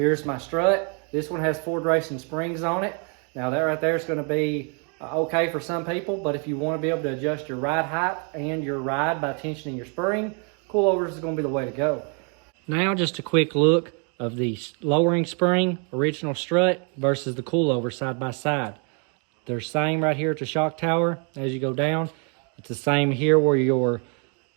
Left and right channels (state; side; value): quieter; left; 37.7 dB